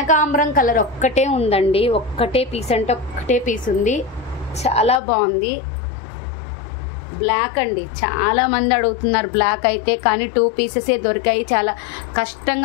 కలర్ ఒక్కటే ఉందండి, ఒక్కటే పీస్ అంటే ఒక్కటే పీస్ ఉంది, చాలా బాగుంది. బ్లాక్ అండి, చాలా మంది అడుగుతున్నారు బ్లాక్ అయితే, కానీ 2 పీసెసే దొరికాయి, చాలా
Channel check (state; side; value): drops out; right; at 5.0 s